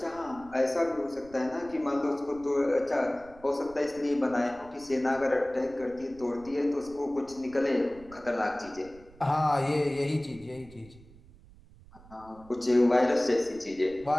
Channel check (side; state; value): right; noise; rumble, 22 dB below the sound